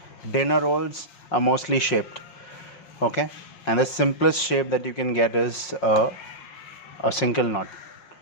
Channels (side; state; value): right; late; 5.5 ms